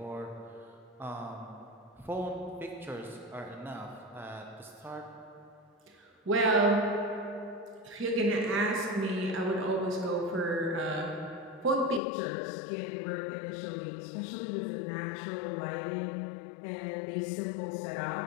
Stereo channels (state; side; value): drops out; right; at 12.0 s